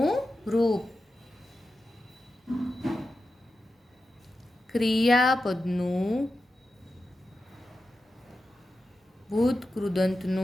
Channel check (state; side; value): normal; both; correlation 0.91